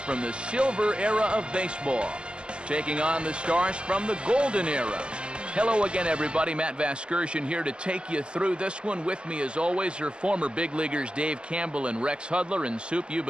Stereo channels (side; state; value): left; late; 0.051 ms